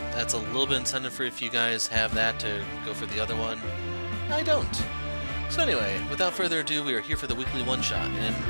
that's a little bit incentive for if you guys have that to go for the other one. I don't. So anyway, without further ado, we are here for the weekly one-shot, and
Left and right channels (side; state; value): both; inverted; correlation -1.00